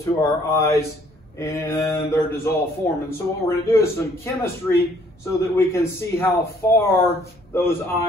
our eyes in their dissolved form. And so what we're going to do is some chemistry so that we can see how far those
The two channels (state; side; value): normal; both; correlation 0.62